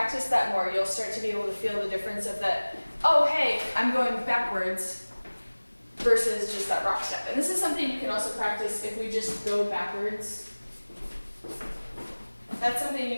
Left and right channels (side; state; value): both; inverted; correlation -1.00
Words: that more, you'll start to be able to feel the difference of that, oh, hey, I'm going backwards versus just that rock step. And this is something you can also practice if we just go backwards. That's something you